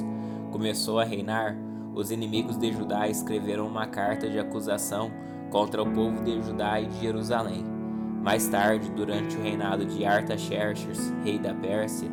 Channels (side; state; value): both; identical; correlation 1.00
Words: começou a reinar, os inimigos de Judá escreveram uma carta de acusação contra o povo de Judá e de Jerusalém. Mais tarde, durante o reinado de Artaxerxes, rei da Pérsia,